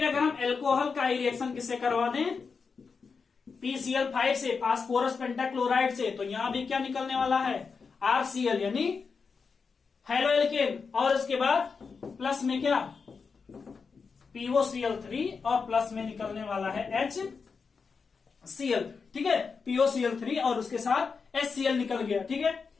अगर हम एल्कोहल का ही रिएक्शन किससे करवा दें, PCl5 से, फास्फोरस पेंटाक्लोराइड से, तो यहां भी क्या निकलने वाला है, RCl यानी हैलो एल्केन, और उसके बाद प्लस में क्या, POCl3 और प्लस में निकलने वाला है HCl। ठीक है, POCl3 और उसके साथ HCl निकल गया। ठीक है,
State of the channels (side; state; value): right; quieter; 5.2 dB